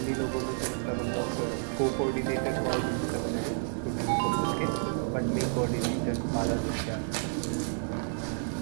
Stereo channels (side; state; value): left; silent; 58 dB below the other